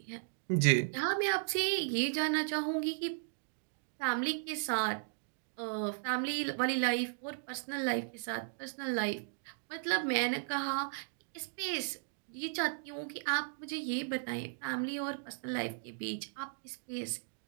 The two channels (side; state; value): left; silent; digital silence